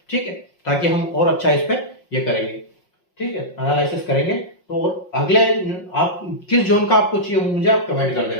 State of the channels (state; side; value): late; right; 5.5 ms